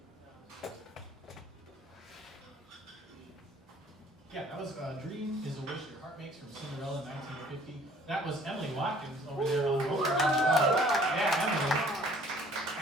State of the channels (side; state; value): both; normal; correlation 0.55